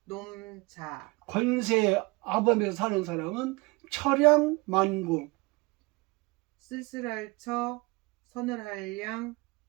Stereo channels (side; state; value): left; quieter; 25.3 dB